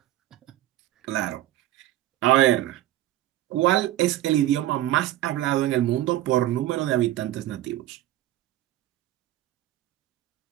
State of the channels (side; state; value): left; quieter; 14.4 dB